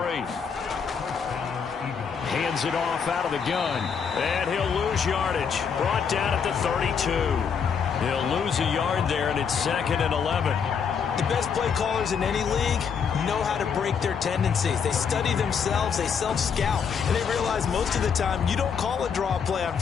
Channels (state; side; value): quieter; right; 6.6 dB